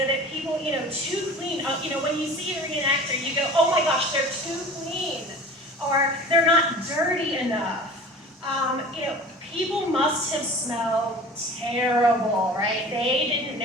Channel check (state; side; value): normal; both; correlation 0.41